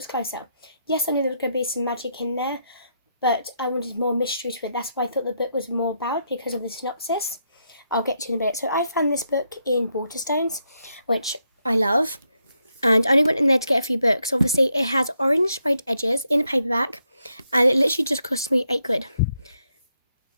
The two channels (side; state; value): both; inverted; correlation -0.79